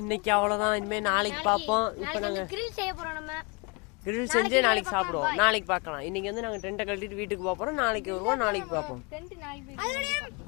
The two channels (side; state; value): right; quieter; 30.0 dB